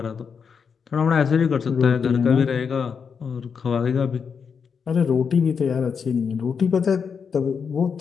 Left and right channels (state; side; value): quieter; right; 6.3 dB